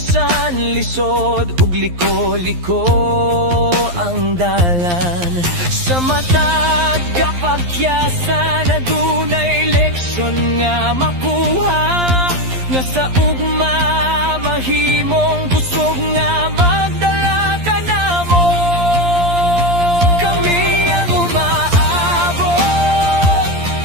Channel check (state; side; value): late; left; 11 ms